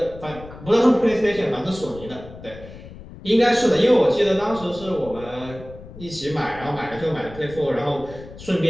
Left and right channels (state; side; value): noise; left; rumble, 16 dB below the sound